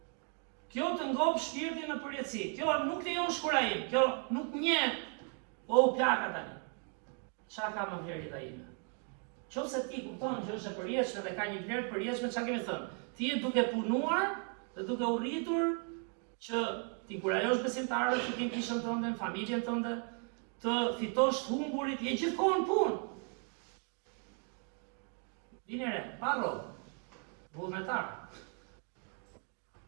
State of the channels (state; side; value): quieter; left; 37.7 dB